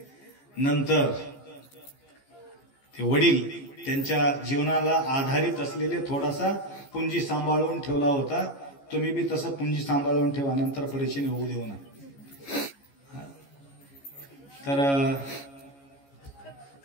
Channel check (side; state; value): right; late; 14 ms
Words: नंतर ते वडील त्यांच्या जीवनाला आधारित असलेले थोडासा पुंजी सांभाळून ठेवला होता, तुम्ही बी तसं पुंजी सांभाळून ठेवा, नंतर परेशानी होऊ देऊ नका. तर